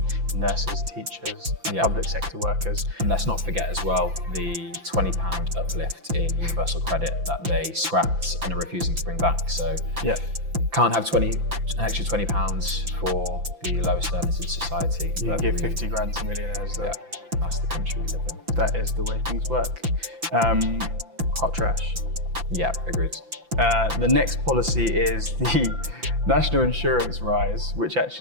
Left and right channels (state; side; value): late; left; 5.9 ms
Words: nurses, teachers, public sector workers. And let's not forget as well the £20 uplift in universal credit that they scrapped and are refusing to bring back. So can't have an extra £20 for the lowest earners in society. You can give 50 grand to millionaires though. Yeah, that's the country we live in. That is the way things work. Hot trash. Yeah, agreed. The next policy is the national insurance rise, which